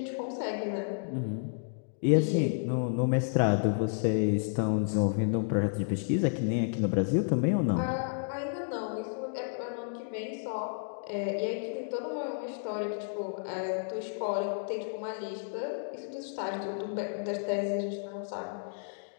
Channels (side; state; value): right; silent; digital silence